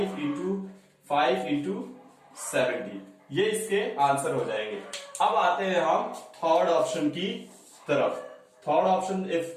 इंटू 5 इंटू 70, ये इसके आंसर हो जाएंगे। अब आते हैं हम थर्ड ऑप्शन की तरफ। थर्ड ऑप्शन,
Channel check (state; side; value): identical; both; correlation 1.00